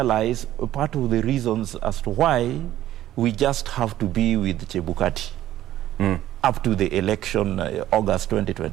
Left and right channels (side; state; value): left; quieter; 13.3 dB